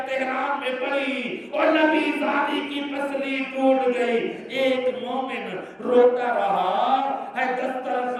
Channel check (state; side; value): identical; both; correlation 1.00